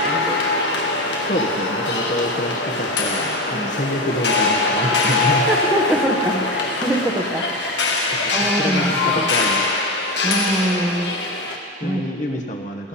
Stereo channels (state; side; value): normal; both; correlation 0.20